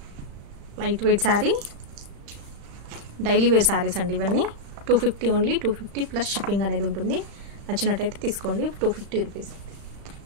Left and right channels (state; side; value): late; left; 35 ms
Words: Light weight sari, daily wear saris అండి ఇవన్నీ. 250 ఓన్లీ, 250 ప్లస్ షిప్పింగ్ అనేది ఉంటుంది. నచ్చినట్టయితే తీసుకోండి. 250 రూపీస్.